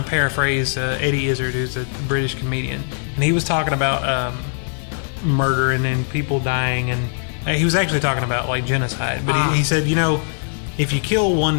paraphrase Eddie Izzard, who's a British comedian, and he was talking about murder and people dying, and he was actually talking about like genocide. But he said, if you kill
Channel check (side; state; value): right; silent; 64 dB below the other